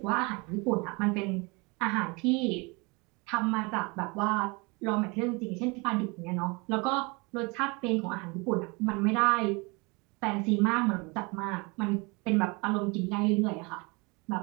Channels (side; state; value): left; quieter; 28.2 dB